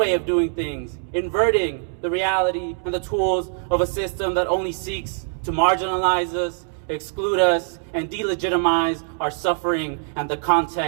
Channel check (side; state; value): left; silent; 61 dB below the other